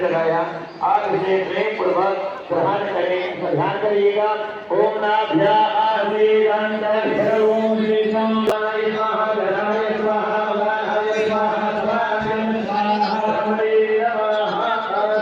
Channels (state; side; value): identical; both; correlation 1.00